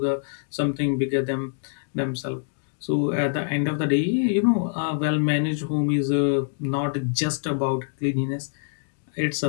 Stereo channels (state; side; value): silent; right; digital silence